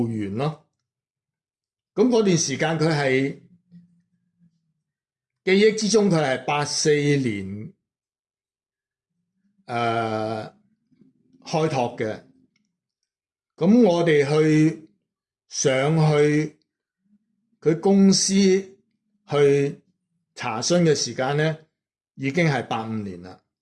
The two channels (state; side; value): identical; both; correlation 1.00